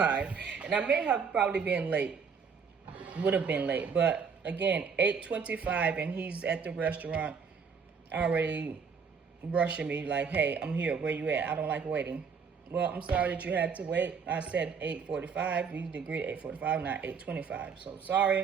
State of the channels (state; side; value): quieter; left; 5.9 dB